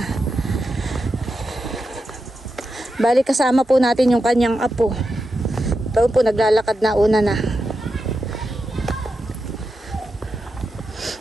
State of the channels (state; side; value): normal; both; correlation 0.88